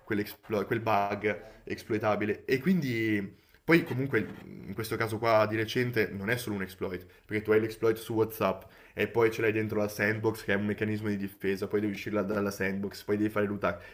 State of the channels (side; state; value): both; identical; correlation 1.00